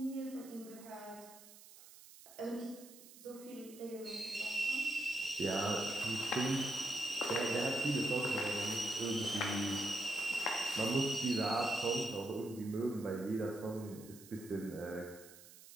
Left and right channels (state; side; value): noise; right; hiss, 19 dB below the sound